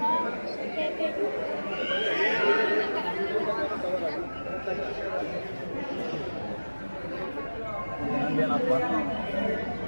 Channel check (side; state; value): both; inverted; correlation -1.00